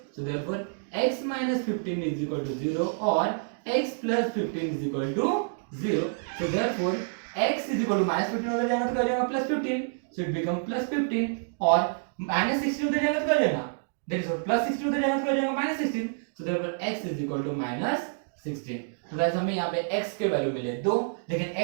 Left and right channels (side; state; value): left; silent; digital silence